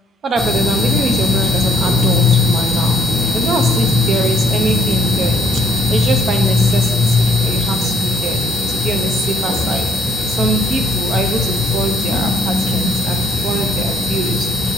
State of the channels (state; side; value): normal; both; correlation 0.65